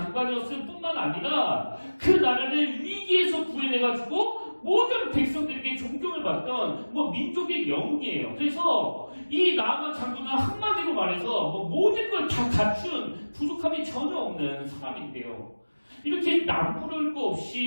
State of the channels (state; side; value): inverted; both; correlation -1.00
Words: 뿐만 아니라 그 나라를 위기에서 구해내가지고 모든 백성들에게 존경을 받던 민족의 영웅이에요. 그래서 이 나아만 장군은 한마디로 말해서 모든 걸 다 갖춘 부족함이 전혀 없는 사람인데요. 이렇게 남부를 거